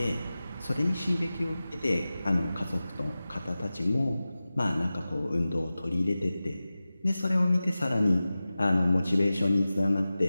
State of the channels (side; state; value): both; inverted; correlation -0.96